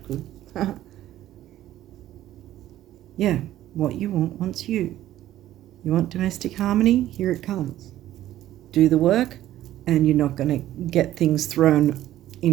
Good. Yeah, what you want wants you. You want domestic harmony? Here it comes. Do the work, and you're not going to get things thrown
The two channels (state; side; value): quieter; left; 13.5 dB